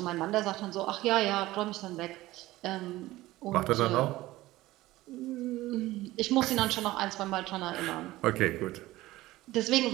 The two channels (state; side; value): quieter; left; 17.4 dB